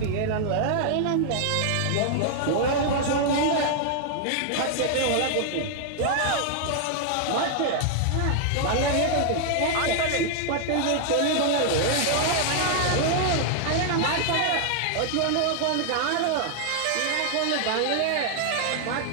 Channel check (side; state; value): both; different; correlation 0.00